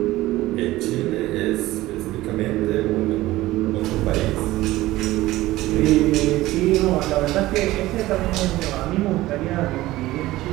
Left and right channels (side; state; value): left; quieter; 17.2 dB